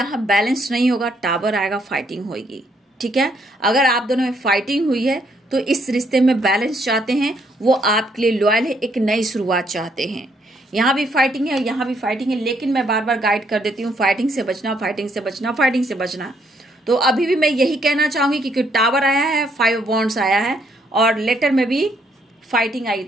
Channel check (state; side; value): normal; both; correlation 0.71